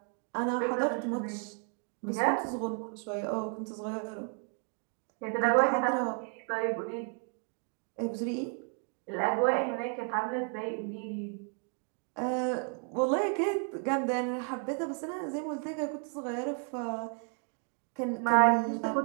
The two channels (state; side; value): quieter; left; 38.6 dB